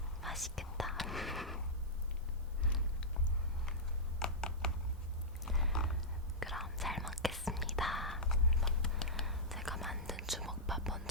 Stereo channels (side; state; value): both; normal; correlation -0.11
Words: 맛있겠다. 그럼 잘 먹겠습니다. 제가 만든 주먹밥